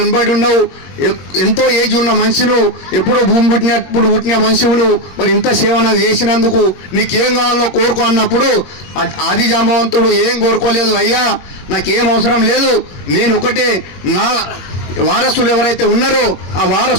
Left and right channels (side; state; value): right; late; 21 ms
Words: ఉన్నావు, ఎంతో ఏజ్ ఉన్న మనిషిను, ఎప్పుడో భూమి పుట్టిన మనిషిను, మరి ఇంత సేవ నాకు చేసినందుకు నీకేం కావాలో కోరుకో అన్నప్పుడు ఆది జాంబవంతుడు ఏం కోరుకోలేదు. అయ్యా నాకేం అవసరం లేదు, నేను ఒకటే నా వారసులు ఎవరైతే ఉన్నారో ఆ